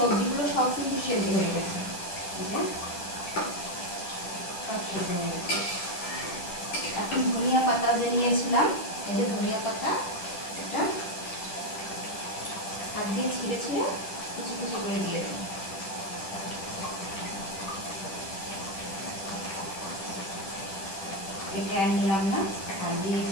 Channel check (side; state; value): right; late; 10 ms